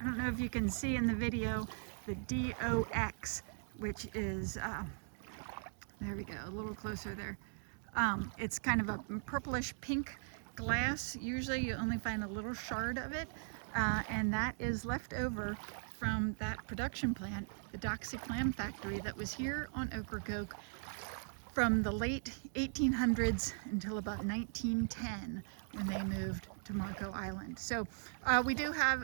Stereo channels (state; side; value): silent; left; digital silence